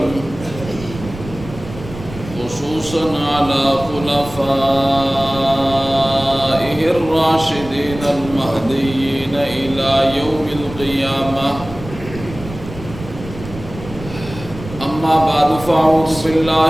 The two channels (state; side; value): noise; right; rumble, 13 dB below the sound